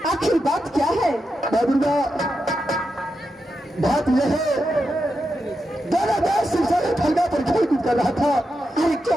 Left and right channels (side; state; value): both; normal; correlation 0.87